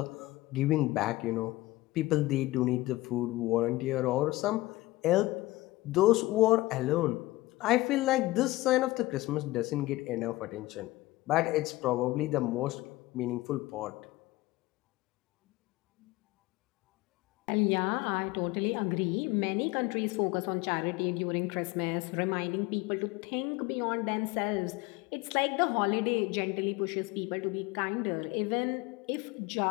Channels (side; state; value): right; quieter; 19.2 dB